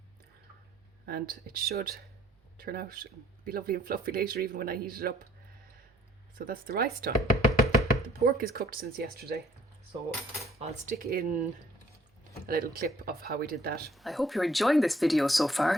And it should turn out and be lovely and fluffy later, even when I heat it up. So that's the rice done. The pork is cooked since yesterday, so I'll stick in a little clip of how we did that. I hope you're enjoying this video so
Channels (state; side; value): normal; both; correlation 0.61